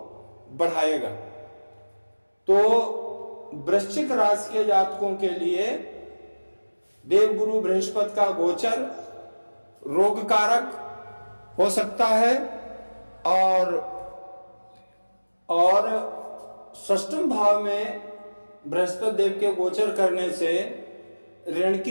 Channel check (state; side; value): inverted; both; correlation -1.00